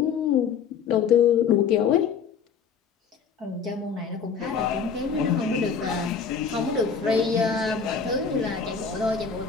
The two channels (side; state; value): right; quieter; 6.4 dB